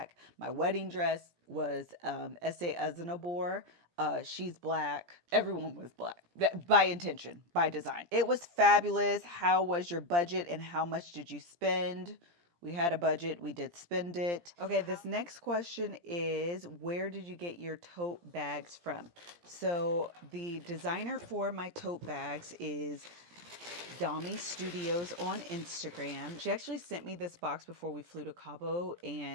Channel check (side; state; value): left; late; 17 ms